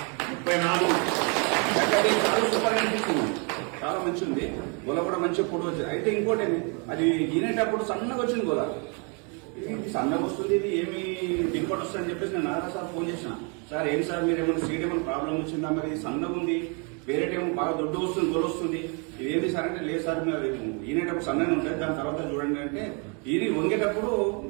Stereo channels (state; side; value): quieter; left; 35.3 dB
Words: 34 చాలా సూపర్ అనిపిస్తుంది. చాలా మంచి ఉంది. గొల కూడా మంచిగా పొడి వచ్చింది. అయితే ఇంకోటి అది ఈనేటప్పుడు సన్నగా వచ్చింది గొల. ఇది సన్నగా వస్తుంది, ఇది ఏమి దిగుబడి వస్తుంది అని చెప్పేసి నేను నారా సార్ ఫోన్ చేసిన. సార్ ఏం సార్ మీరు ఏమైనా సీడ్ ఏమైనా ప్రాబ్లం వచ్చిందా, మరి సన్నగా ఉంది, వేరేటేమో బాగా దొడ్డు వస్తుంది, గొల వస్తుంది, ఇదేంటి సార్ అంటే లేదు సార్ మీరు ఈనేటప్పుడు సన్నగా ఉంటుంది, దాని తర్వాత చూడండి అంటే ఇది వంగేటప్పుడు